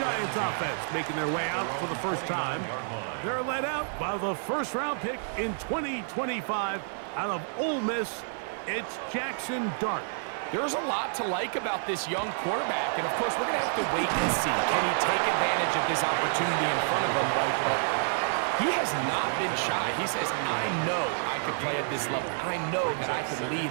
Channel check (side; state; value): left; silent; 59 dB below the other